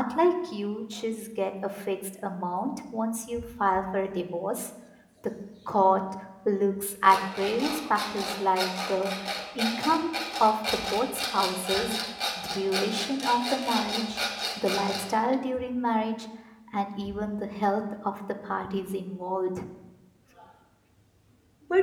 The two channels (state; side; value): identical; both; correlation 1.00